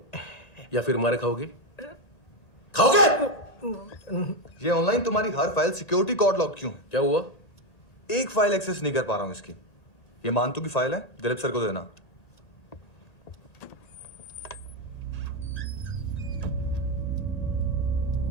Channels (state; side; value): late; right; 1.9 ms